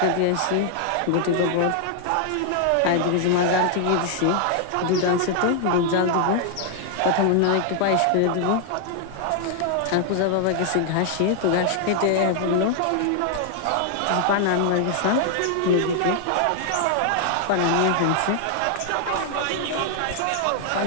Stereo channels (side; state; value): both; different; correlation 0.00